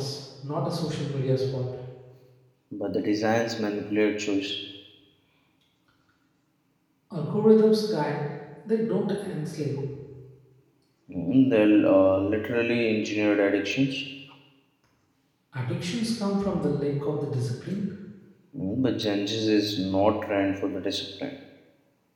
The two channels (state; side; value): identical; both; correlation 1.00